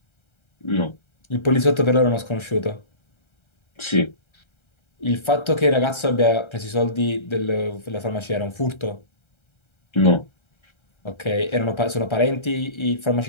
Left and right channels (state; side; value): late; right; 1.3 ms